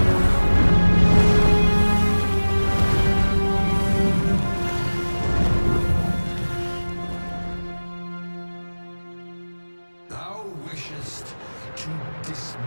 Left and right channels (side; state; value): both; inverted; correlation -1.00